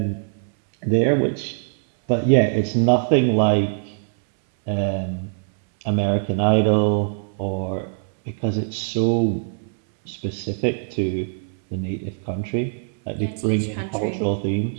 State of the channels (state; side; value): silent; left; 62 dB below the other